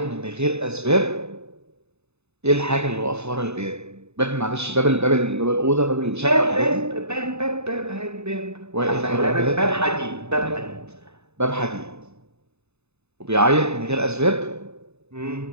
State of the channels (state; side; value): late; left; 0.80 ms